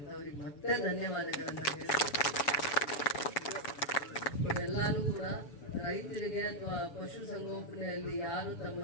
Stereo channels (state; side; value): late; right; 7.1 ms